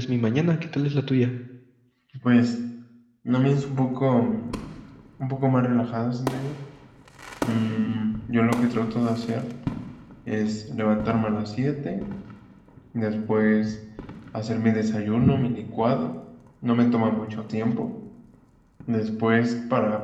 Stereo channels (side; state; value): both; identical; correlation 1.00